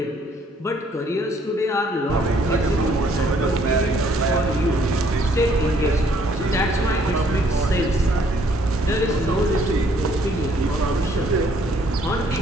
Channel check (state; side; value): normal; both; correlation 0.64